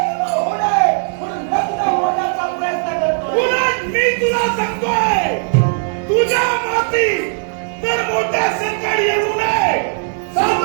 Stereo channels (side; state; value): left; silent; digital silence